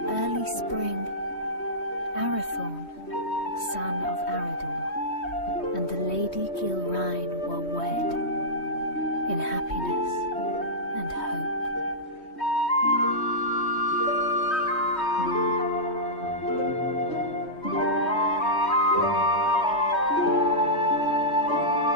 early spring, Arathorn, son of Arador, and the Lady Gilrain were wed in happiness and hope.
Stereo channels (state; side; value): late; right; 3.2 ms